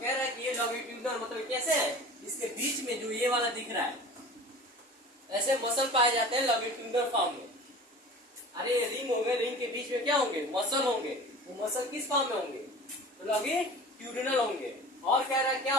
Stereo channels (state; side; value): normal; both; correlation 0.40